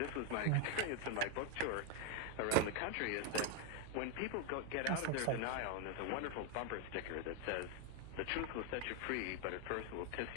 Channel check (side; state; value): both; different; correlation 0.01